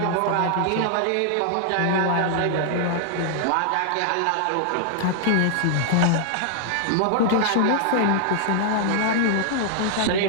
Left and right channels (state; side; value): different; both; correlation -0.01